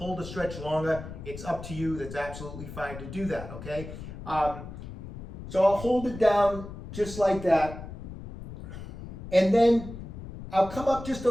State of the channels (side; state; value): left; noise; rumble, 11 dB below the sound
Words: the stretch longer, it's up to you. That's absolutely fine to do that, okay? So I'll hold it down just like that. And then I'll come up just a